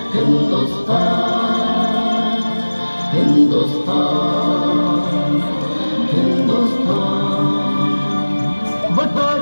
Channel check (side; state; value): both; inverted; correlation -1.00